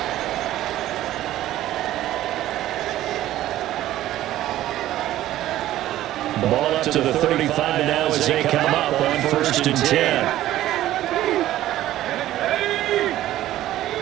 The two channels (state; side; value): quieter; left; 14.0 dB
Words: Ball up to the 35 now as they come up on 1st and 10.